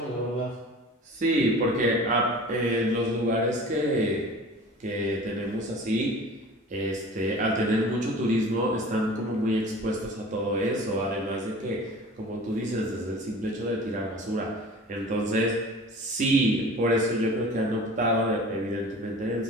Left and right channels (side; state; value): both; normal; correlation 0.42